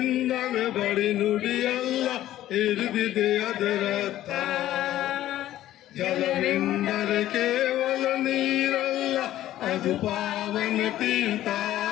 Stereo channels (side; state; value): right; quieter; 13.6 dB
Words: ಬಳಿ ನುಡಿಯಲ್ಲ ಹೇಳಿದೆ ಅದರರ್ಥ. ಜಲವೆಂದರೆ ಕೇವಲ ನೀರಲ್ಲ, ಅದು ಪಾವನ ತೀರ್ಥ,